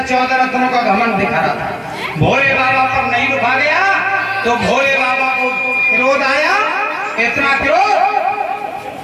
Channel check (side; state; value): both; identical; correlation 1.00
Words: चौदह रत्नों का घमंड दिखा रहा था। भोले बाबा पर नहीं रुका गया तो भोले बाबा को क्रोध आया, इतना क्रोध